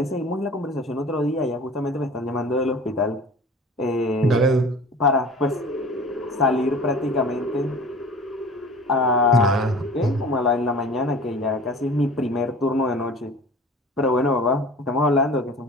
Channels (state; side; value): normal; both; correlation 0.41